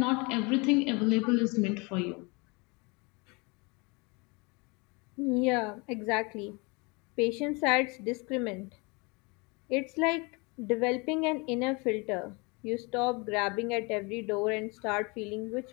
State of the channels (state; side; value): quieter; right; 28.7 dB